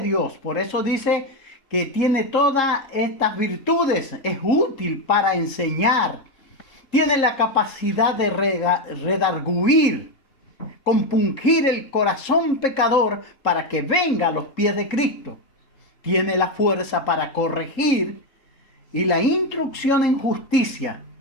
Dios. Por eso dice que tiene todas estas virtudes. Es útil para enseñar. Tiene la capacidad de redarguir, compungir el corazón pecador para que venga a los pies de Cristo. Tiene la fuerza para corregir y la instrucción en justicia.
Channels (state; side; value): late; right; 3.7 ms